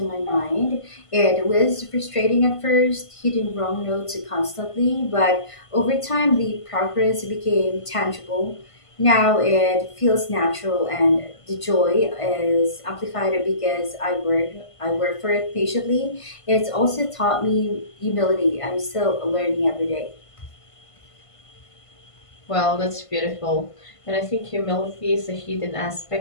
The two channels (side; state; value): right; late; 1.5 ms